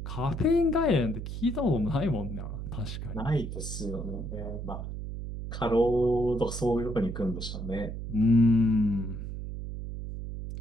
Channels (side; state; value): right; noise; hum, 7 dB below the sound